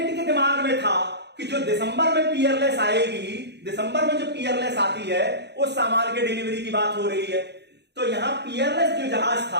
के दिमाग में था कि जो दिसंबर में पियरलेस आएगी, दिसंबर में जो पियरलेस आती है उस सामान के डिलीवरी की बात हो रही है। तो यहां पियरलेस जो जहाज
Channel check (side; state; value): left; late; 0.49 ms